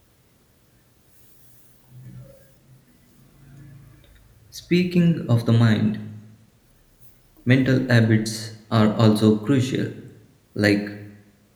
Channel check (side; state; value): both; identical; correlation 1.00